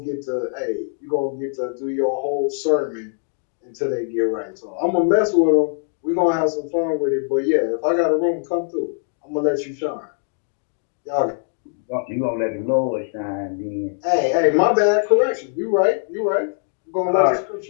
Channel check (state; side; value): silent; right; digital silence